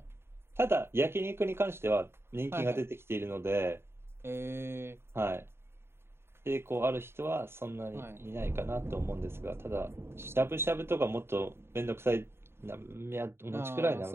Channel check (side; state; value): left; late; 0.12 ms